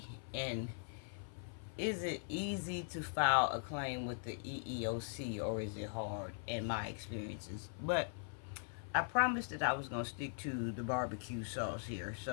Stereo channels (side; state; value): right; silent; 51 dB below the other